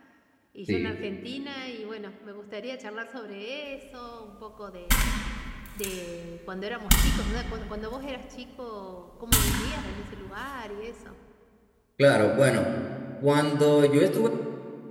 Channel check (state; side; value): identical; both; correlation 1.00